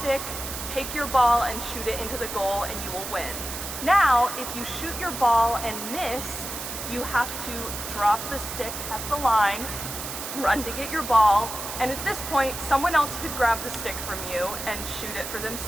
stick. Take your ball and shoot it into the goal and you will win. Now, if you shoot your ball and miss, you have to drop the stick at the line, run to get your ball, and at this point, someone else could grab the stick from you and shoot it for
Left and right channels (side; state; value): right; noise; hiss, 7 dB below the sound